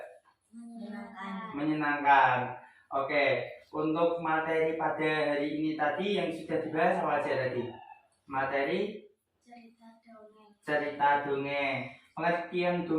Menyenangkan. Oke, untuk materi pada hari ini tadi yang sudah dibahas apa aja tadi? Materi cerita dongeng. Pengertian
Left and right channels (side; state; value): both; identical; correlation 1.00